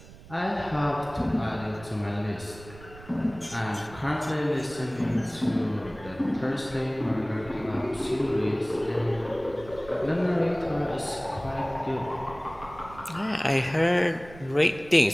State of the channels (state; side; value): noise; right; rumble, 19 dB below the sound